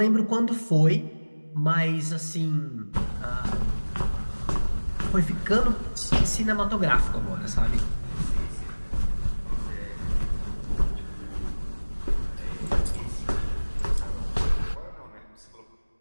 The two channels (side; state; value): both; inverted; correlation -1.00